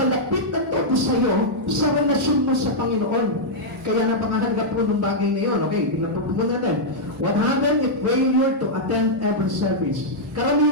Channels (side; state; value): both; normal; correlation -0.07